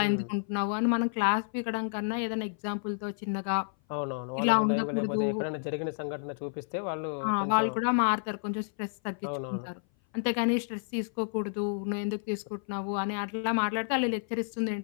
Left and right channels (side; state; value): right; silent; 56 dB below the other